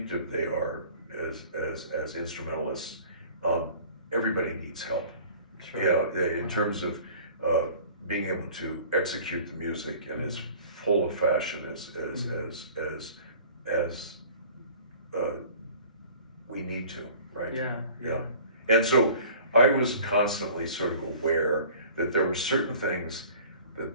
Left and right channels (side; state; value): both; inverted; correlation -0.47